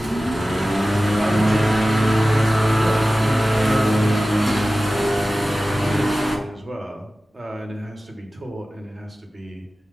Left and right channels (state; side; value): normal; both; correlation 0.96